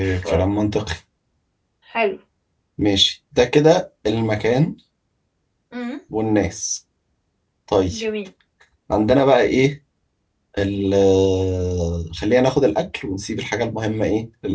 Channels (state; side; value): identical; both; correlation 1.00